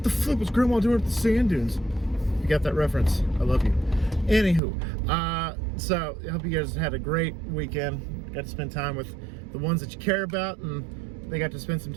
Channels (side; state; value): left; drops out; at 4.6 s